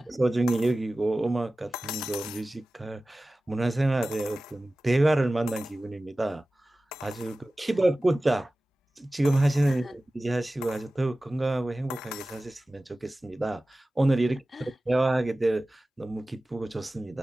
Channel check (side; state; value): both; normal; correlation 0.96